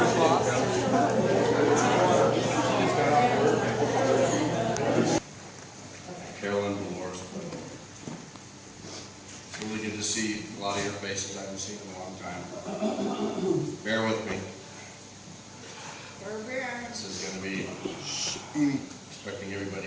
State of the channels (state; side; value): identical; both; correlation 1.00